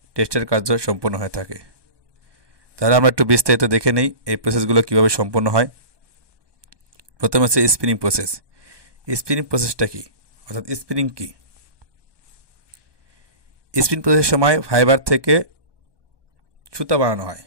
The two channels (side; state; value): left; late; 1.2 ms